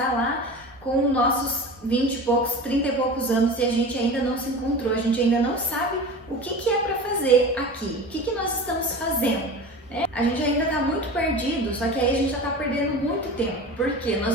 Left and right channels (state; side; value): normal; both; correlation 0.33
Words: lá com nossos 20 e poucos, 30 e poucos anos e a gente ainda não se encontrou, a gente ainda não sabe o que é para fazer aqui, o que nós estamos fazendo. A gente ainda está muito perdido, só que aí a gente já está perdendo muito tempo, porque